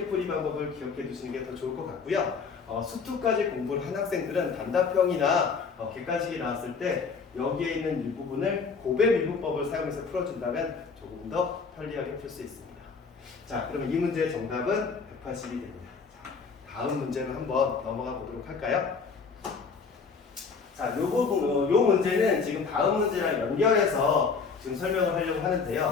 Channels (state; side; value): quieter; right; 5.2 dB